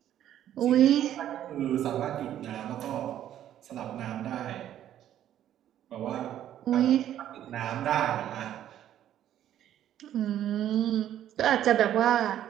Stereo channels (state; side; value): quieter; left; 11.4 dB